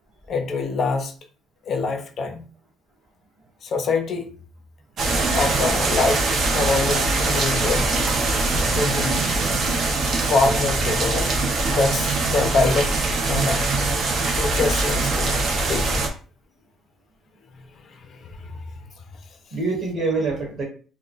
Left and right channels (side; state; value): both; normal; correlation 0.70